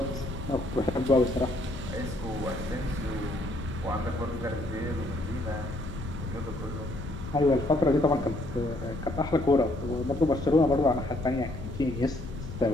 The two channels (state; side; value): noise; left; rumble, 9 dB below the sound